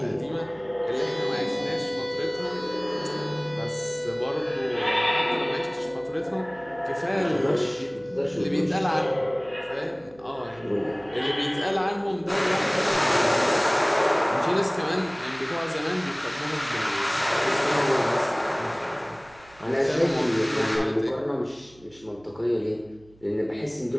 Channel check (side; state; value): right; noise; hum, 27 dB below the sound